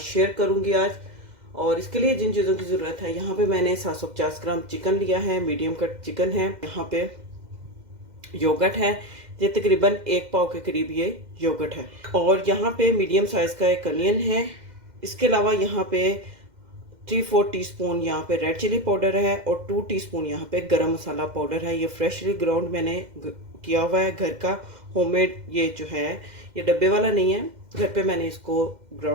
शेयर करूँगी आज। और इसके लिए जिन चीज़ों की ज़रूरत है, यहाँ पे मैंने 750 ग्राम चिकन लिया है, मीडियम कट चिकन है। यहाँ पे योगर्ट है, ये तकरीबन 1 पाव के करीब ये योगर्ट है। और यहाँ पे मीडियम साइज़ का एक अनियन है। इसके अलावा यहाँ पे 3-4 टीस्पून यहाँ पे रेड चिली पाउडर है और 2 टीस्पून यहाँ पे गरम मसाला पाउडर है। ये फ्रेशली ग्राउंड मैंने किया हुआ है, घर का होममेड। ये जो है ये डब्बे वाला नहीं है, घर पे मैंने इसको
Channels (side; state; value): left; late; 2.1 ms